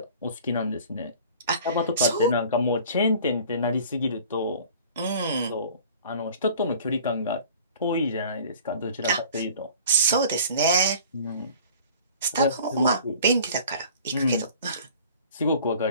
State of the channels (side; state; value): both; inverted; correlation -0.47